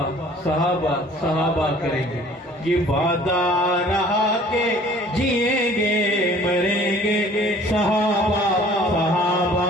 کریں گے، یہ وعدہ رہا کہ جئیں گے مریں گے۔ صحابہ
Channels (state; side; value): normal; both; correlation 0.52